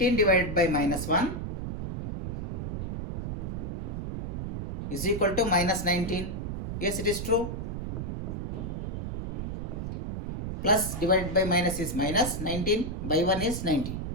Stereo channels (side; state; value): right; noise; rumble, 4 dB below the sound